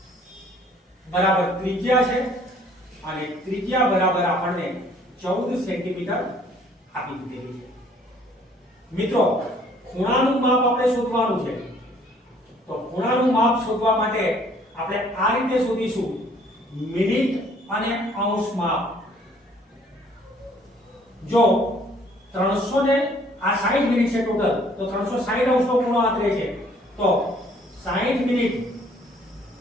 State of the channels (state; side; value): normal; both; correlation 0.59